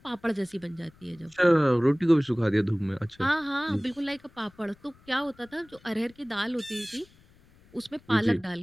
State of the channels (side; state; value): left; noise; rumble, 28 dB below the sound